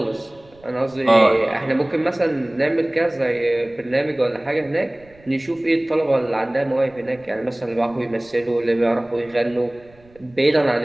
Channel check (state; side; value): noise; right; rumble, 28 dB below the sound